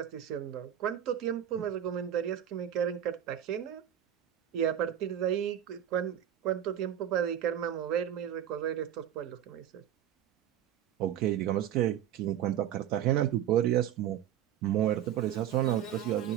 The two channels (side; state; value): left; quieter; 10.5 dB